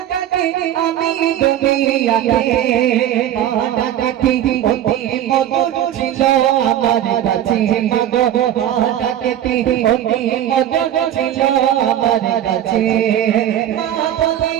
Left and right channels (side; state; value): left; quieter; 11.4 dB